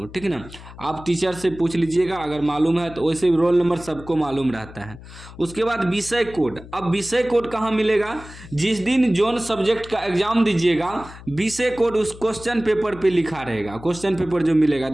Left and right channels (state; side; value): noise; left; hum, 17 dB below the sound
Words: ठीक ना, आप टीचर से पूछ लीजिएगा अगर मालूम है तो। वैसे रोल नंबर सबको मालूम रहता है। उसके बाद विषय कोड। अब विषय कोड कहाँ मिलेगा, जिस दिन जोन सब्जेक्ट का एग्जाम दीजिएगा विषय कोड उस क्वेश्चन पेपर पे लिखा रहेगा। क्वेश्चन पेपर जो मिलेगा,